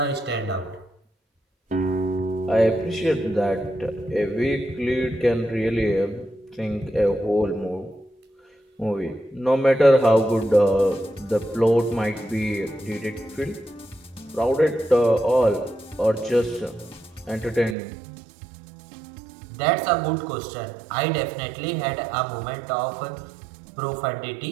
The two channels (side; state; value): left; drops out; at 17.8 s